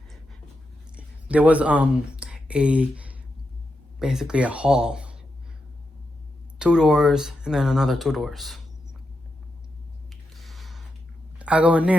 there was basically a hall, 2 doors and then another 2 doors. I go in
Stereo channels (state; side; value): normal; both; correlation 0.86